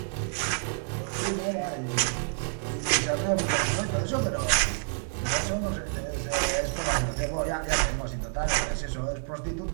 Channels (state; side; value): silent; left; digital silence